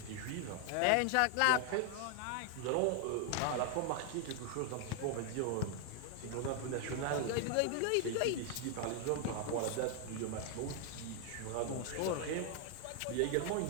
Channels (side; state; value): both; different; correlation 0.00